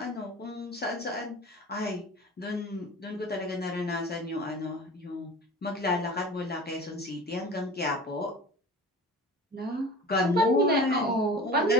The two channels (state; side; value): normal; both; correlation 0.38